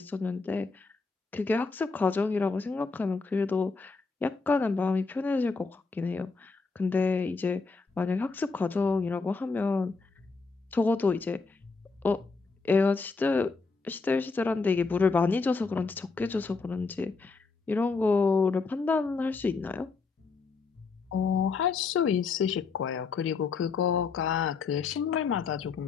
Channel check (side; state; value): right; quieter; 4.4 dB